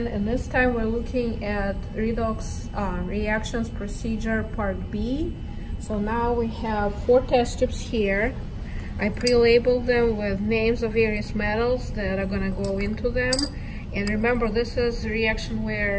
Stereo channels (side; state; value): both; identical; correlation 1.00